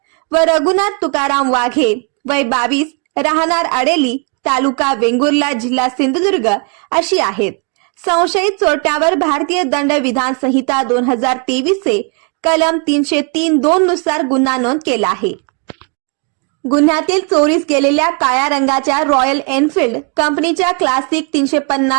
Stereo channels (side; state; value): left; quieter; 36.5 dB